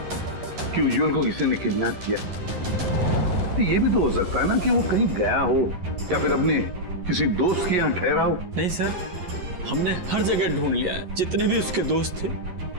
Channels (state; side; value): late; left; 11 ms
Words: कि उज्जवल को किसी ने किडनैप किया? तो ये भी तो हो सकता है ना कि वो कहीं गया हो या फिर अपने किसी दोस्त के यहाँ ठहरा हो। नहीं सर, हमने हर जगह ढूंढ लिया है, जितने भी उसके दोस्त थे